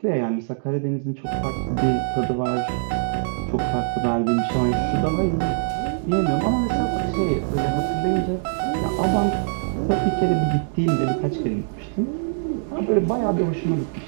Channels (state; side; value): silent; left; digital silence